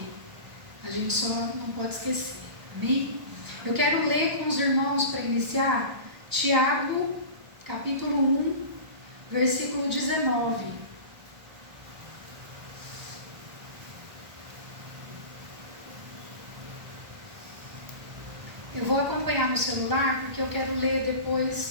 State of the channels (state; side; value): late; left; 1.3 ms